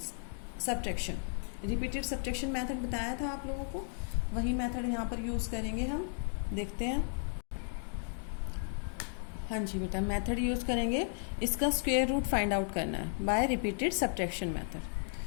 subtraction. Repeated subtraction method बताया था आप लोगों को, वही मेथड यहाँ पर यूज़ करेंगे हम, देखते हैं। हाँ जी बेटा, मेथड यूज़ करेंगे, इसका स्क्वायर रूट फाइंड आउट करना है बाय रिपीटेड सब्ट्रैक्शन मेथड।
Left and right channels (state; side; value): silent; right; 55 dB below the other